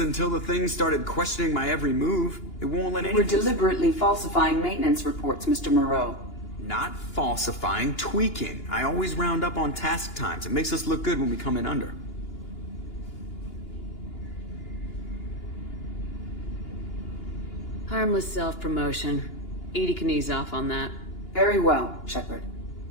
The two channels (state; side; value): late; right; 2.9 ms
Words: until the thing started questioning my every move. It won't let We're anything... deliberately falsifying maintenance reports, Mr. Moreau. Not falsifying, tweaking. I always round up on task times. It makes us look good when we come in under. Harmless self-promotion. Edie can ease off on that. Very well, Shepard.